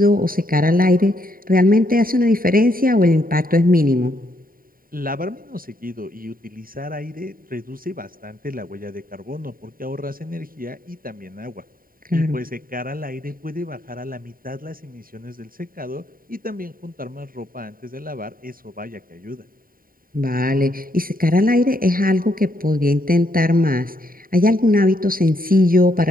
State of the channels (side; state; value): left; late; 0.41 ms